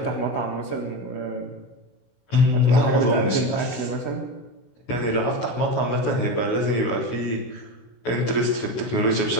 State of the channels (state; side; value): late; right; 16 ms